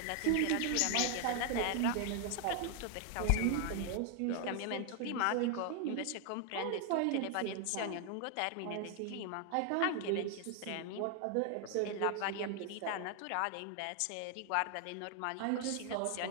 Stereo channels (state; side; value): different; both; correlation 0.00